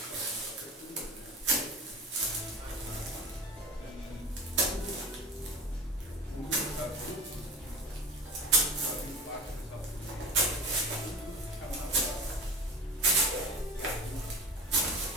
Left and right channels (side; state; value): both; normal; correlation 0.32